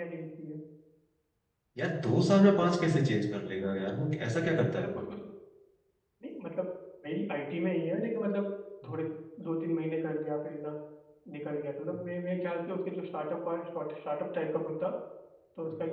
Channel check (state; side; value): identical; both; correlation 1.00